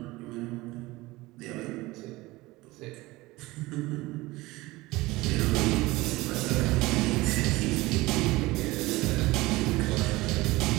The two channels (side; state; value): left; quieter; 20.3 dB